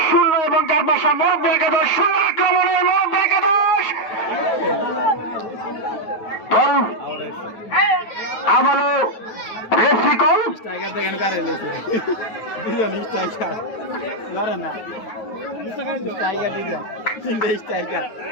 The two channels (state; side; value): late; right; 9.3 ms